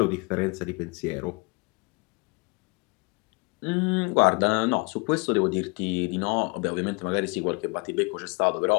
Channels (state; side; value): quieter; right; 29.3 dB